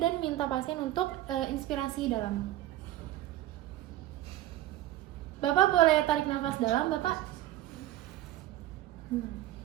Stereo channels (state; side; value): quieter; left; 14.7 dB